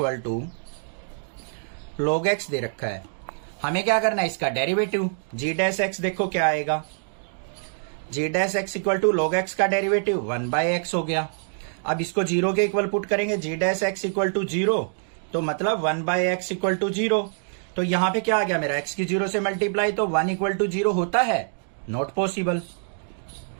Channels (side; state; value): left; silent; digital silence